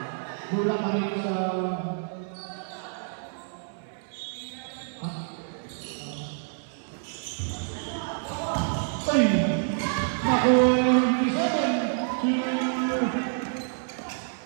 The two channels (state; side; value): silent; left; 60 dB below the other